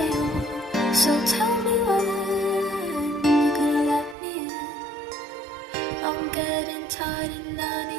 on. So tell me when you're gonna let me in. I'm getting tired and I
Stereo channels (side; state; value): left; drops out; at 4.2 s